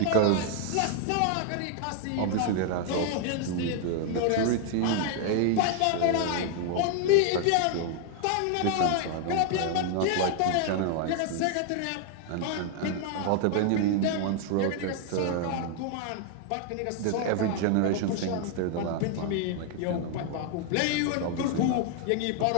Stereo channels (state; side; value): different; both; correlation 0.00